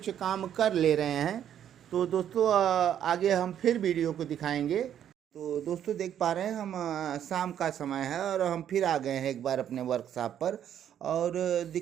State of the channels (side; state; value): left; quieter; 9.9 dB